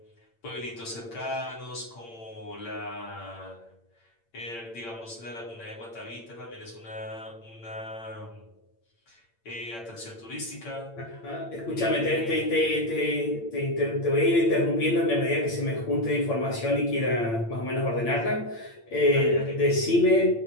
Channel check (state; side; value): late; right; 8.8 ms